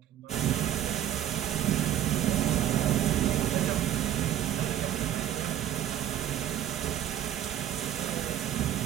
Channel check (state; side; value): quieter; left; 11.3 dB